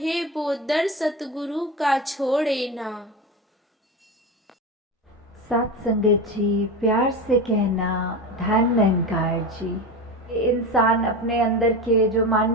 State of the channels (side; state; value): both; normal; correlation 0.22